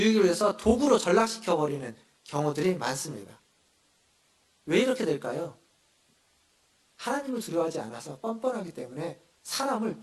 위해서 도구로 전락시켜버리는 경우들이 많습니다. 왜 이렇게 될까요? 하나님을 두려워하지 않아서 뻔뻔하기 때문에 사람을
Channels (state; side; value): identical; both; correlation 1.00